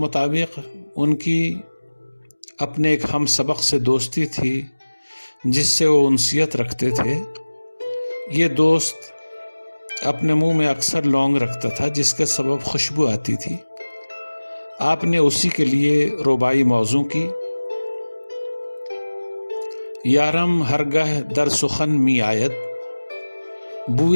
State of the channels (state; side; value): inverted; both; correlation -1.00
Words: ان کی اپنے ایک ہم سبق سے دوستی تھی جس سے وہ انسیت رکھتے تھے۔ یہ دوست اپنے منہ میں اکثر لونگ رکھتا تھا جس کے سبب خوشبو آتی تھی۔ آپ نے اسی کے لیے رباعی موضوع کی: یارم ہرگہ در سخن می آید،